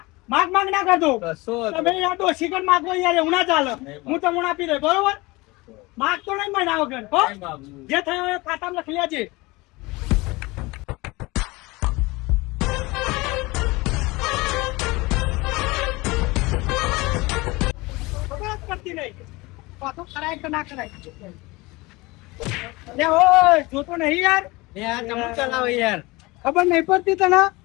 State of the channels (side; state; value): right; quieter; 22.9 dB